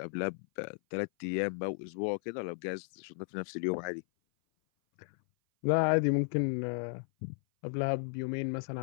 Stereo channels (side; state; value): right; silent; 55 dB below the other